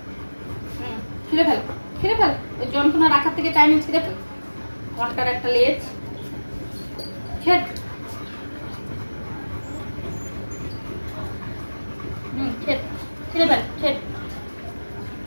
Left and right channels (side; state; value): both; inverted; correlation -1.00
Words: ছিঁড়ে ফেল ছিঁড়ে ফেল ওই যন্ত্রণা রাখার থেকে টাইমে ছিঁড়ে ফেল ঘন্টার একটা লেজ ছেড় ছেড় ছিঁড়ে ফেল ছেড়